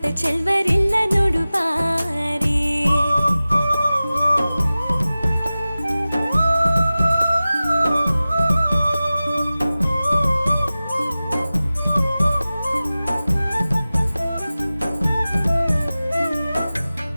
ಚೆಲ್ವರಿಲ್ಲ ನೋಡು ಬಾರಿ.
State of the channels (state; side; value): inverted; both; correlation -0.97